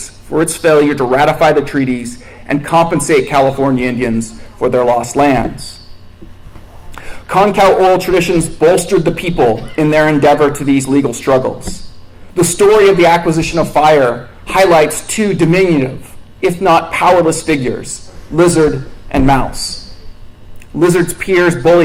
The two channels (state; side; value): identical; both; correlation 1.00